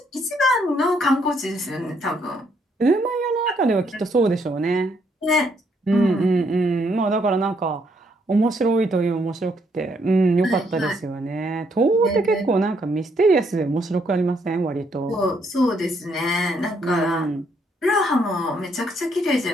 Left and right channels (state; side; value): normal; both; correlation 0.72